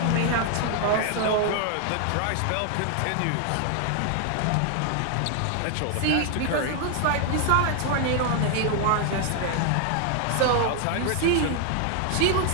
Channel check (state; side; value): different; both; correlation 0.00